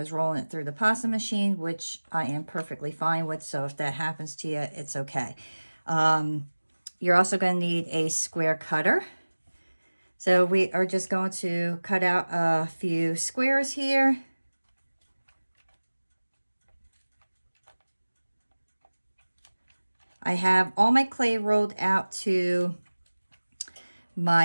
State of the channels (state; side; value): inverted; both; correlation -1.00